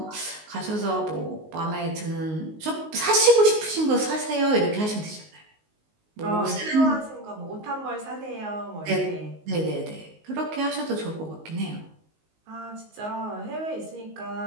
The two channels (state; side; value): late; left; 19 ms